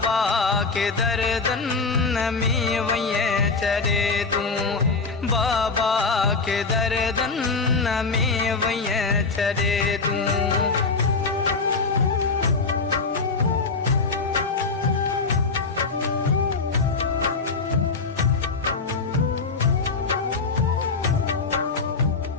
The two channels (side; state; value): right; quieter; 4.3 dB